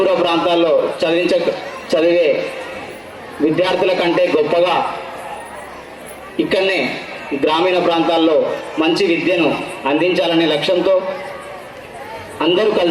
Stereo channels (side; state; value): both; identical; correlation 1.00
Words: ప్రాంతాల్లో చదివే విద్యార్థుల కంటే గొప్పగా ఇక్కడనే గ్రామీణ ప్రాంతాల్లో మంచి విద్యను అందించాలనే లక్ష్యంతో అందరూ